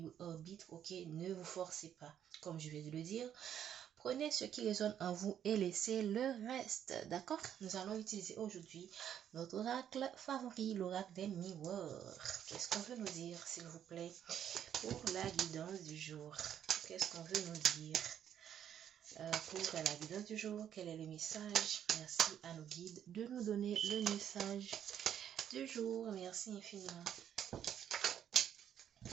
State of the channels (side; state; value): left; quieter; 9.6 dB